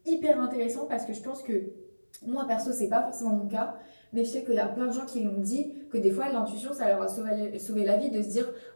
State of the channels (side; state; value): both; inverted; correlation -1.00